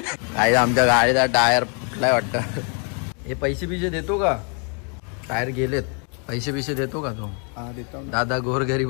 काय आमच्या गाडीचा टायर फुटलाय वाटतं. हे पैसे बिशे देतो का. टायर गेलेत. पैसे बिशे देतो का तो. दादा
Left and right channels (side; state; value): right; quieter; 38.5 dB